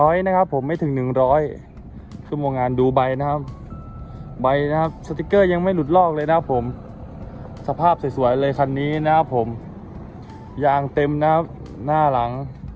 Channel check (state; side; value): identical; both; correlation 1.00